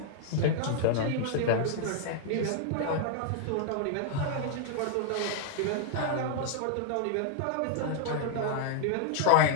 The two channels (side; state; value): both; different; correlation -0.01